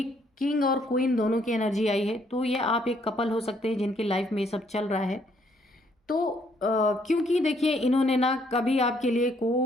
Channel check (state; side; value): normal; both; correlation 0.68